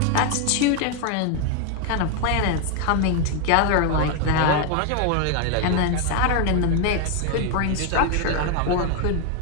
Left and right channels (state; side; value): different; both; correlation 0.01